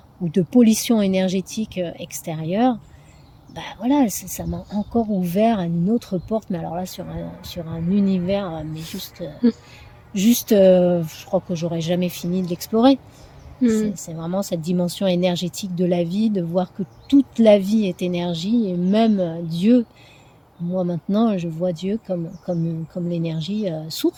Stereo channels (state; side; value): identical; both; correlation 1.00